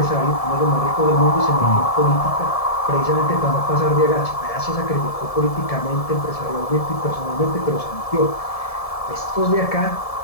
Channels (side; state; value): right; late; 1.7 ms